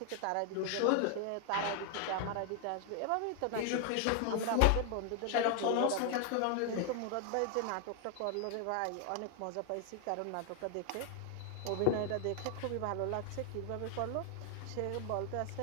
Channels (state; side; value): different; both; correlation 0.00